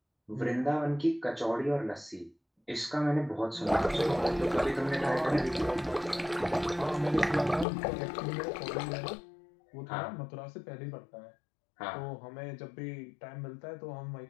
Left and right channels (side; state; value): right; drops out; at 7.7 s